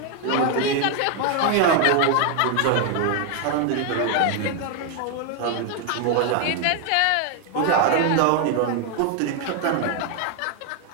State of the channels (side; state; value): both; different; correlation 0.00